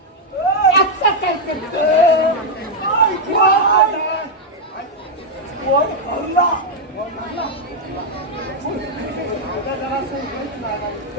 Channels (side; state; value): both; normal; correlation -0.01